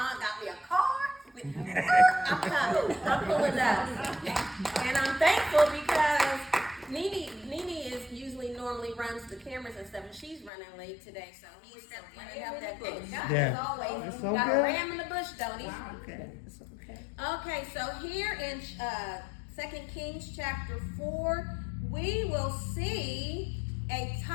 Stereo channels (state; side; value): drops out; right; at 10.5 s